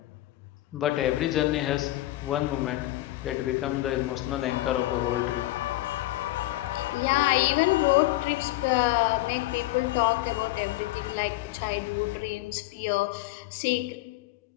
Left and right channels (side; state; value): right; quieter; 17.5 dB